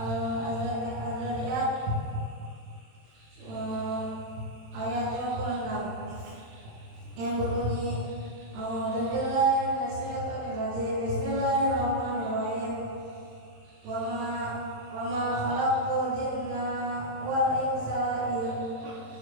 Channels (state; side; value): late; left; 27 ms